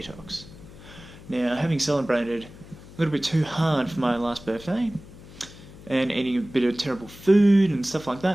Now, having celebrated a little bit too hard for my last birthday, and eating a bit of terrible food and stuff like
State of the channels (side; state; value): left; noise; hum, 18 dB below the sound